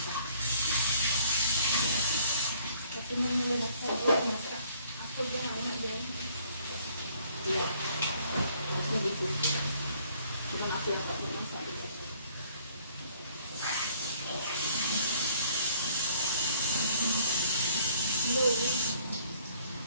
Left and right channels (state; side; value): inverted; both; correlation -0.61